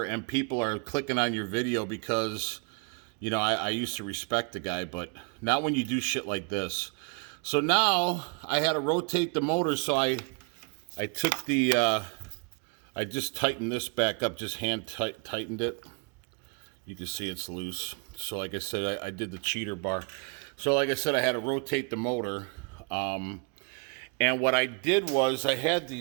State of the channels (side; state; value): left; quieter; 36.8 dB